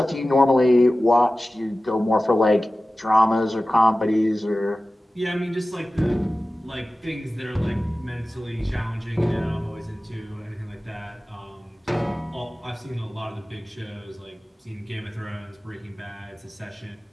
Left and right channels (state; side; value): normal; both; correlation 0.96